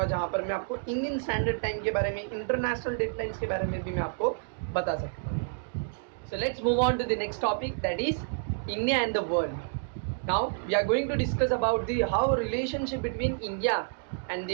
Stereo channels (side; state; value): left; silent; digital silence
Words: जहाँ पर मैं आपको इंडियन स्टैंडर्ड टाइम के बारे में, इंटरनेशनल डेडलाइंस के बारे में भी मैं आपको बता सकता हूँ. So let's move on to the next topic, that is India and the world. Now we are going to discuss about the how relationship between India and